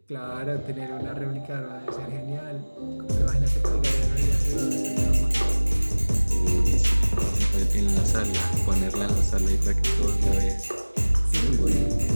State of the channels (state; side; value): inverted; both; correlation -1.00